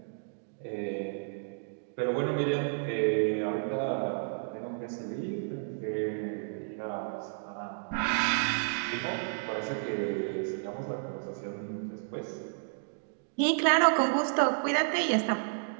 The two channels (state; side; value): silent; left; digital silence